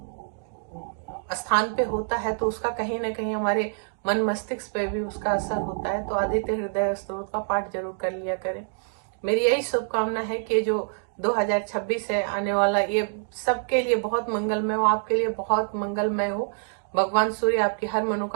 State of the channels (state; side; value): silent; left; digital silence